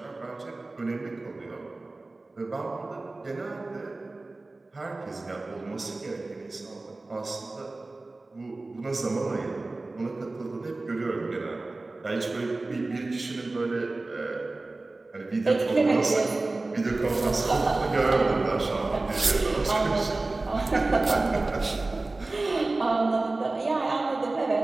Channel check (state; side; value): quieter; left; 3.2 dB